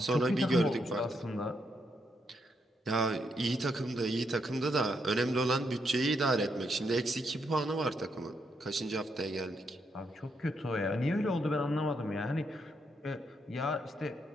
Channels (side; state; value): both; normal; correlation 0.78